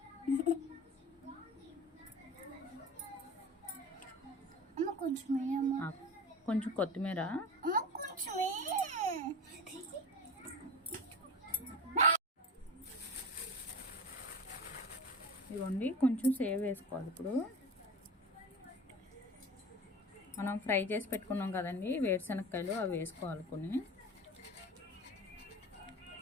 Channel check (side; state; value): both; normal; correlation 0.31